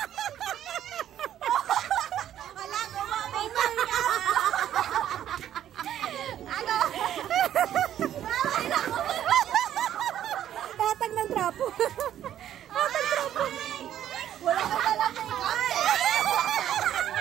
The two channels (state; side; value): quieter; left; 11.1 dB